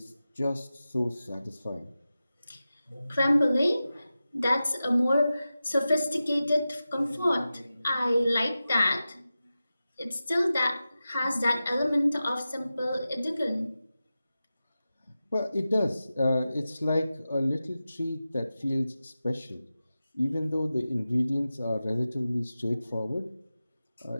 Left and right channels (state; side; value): inverted; both; correlation -0.94